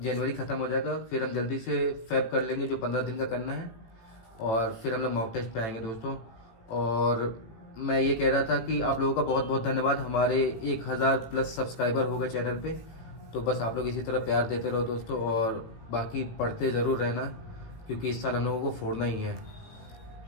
जनवरी ख़त्म हो जाएगा, फिर हम जल्दी से फैब कर लेंगे जो 15 दिन का करना है, और फिर हम लोग मॉक टेस्ट पे आएंगे दोस्तों। और मैं ये कह रहा था कि आप लोगों का बहुत बहुत धन्यवाद, हमारे 1000+ सब्सक्राइबर हो गए चैनल पे। तो बस आप लोग इसी तरह प्यार देते रहो दोस्तों, और बाकी पढ़ते ज़रूर रहना क्योंकि इस साल हम लोगों को फोड़ना ही है।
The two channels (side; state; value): right; late; 18 ms